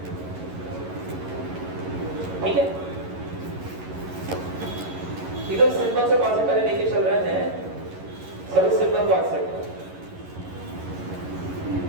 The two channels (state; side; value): late; left; 11 ms